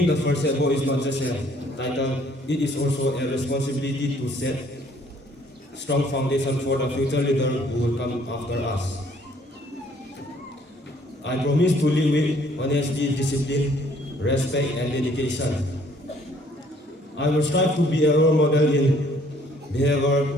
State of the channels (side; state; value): both; normal; correlation 0.61